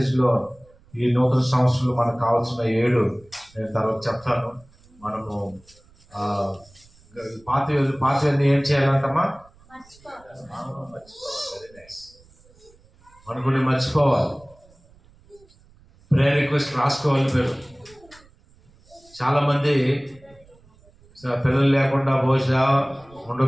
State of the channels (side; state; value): right; noise; rumble, 28 dB below the sound